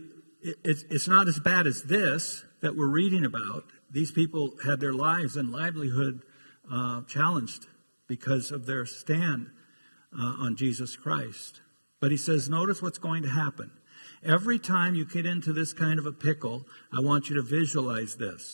it's not as bad as this that we're reading about. These people had their lives and livelihood challenged because of their stand on Jesus Christ. But he says, notice what's going to happen. Every time you get into this kind of a pickle, I want you to visualize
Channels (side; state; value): both; inverted; correlation -1.00